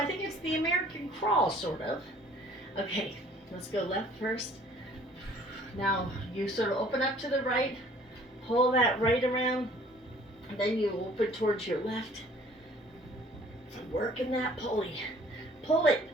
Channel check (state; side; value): normal; both; correlation 0.54